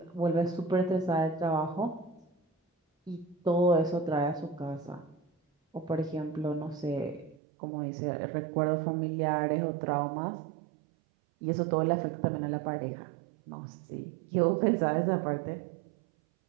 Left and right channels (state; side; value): drops out; left; at 7.4 s